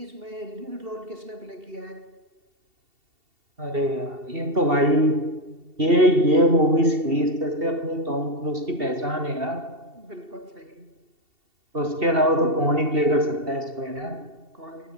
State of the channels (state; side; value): late; left; 2.7 ms